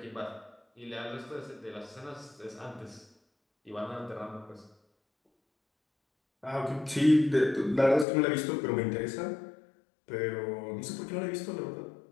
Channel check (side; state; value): right; drops out; at 8.1 s